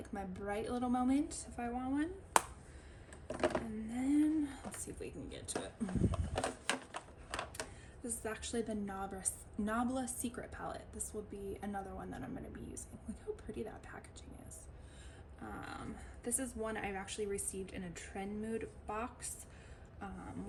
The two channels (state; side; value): identical; both; correlation 1.00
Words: my bright little moment if I want one. And then let's see if we can get to it. This is actually the Nabla Secret palette. This will be another one that I'm going to be using. Look how pretty that packaging is. This is one I've actually received in a Trend Mood box,